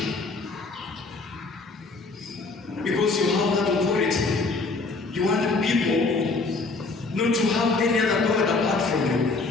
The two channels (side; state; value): right; quieter; 3.8 dB